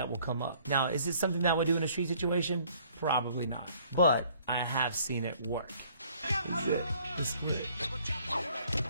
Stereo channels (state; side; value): inverted; both; correlation -0.59